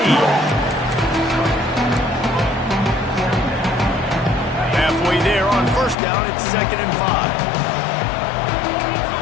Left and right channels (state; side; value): drops out; right; at 6.0 s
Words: Halfway there on first down, it's 2nd and 5.